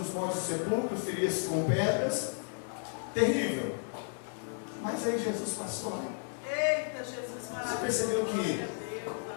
montes sepulcros, feria-se com pedras, terrível. Mas aí Jesus passou lá. Eita, Jesus, você percebeu que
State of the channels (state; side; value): silent; right; 56 dB below the other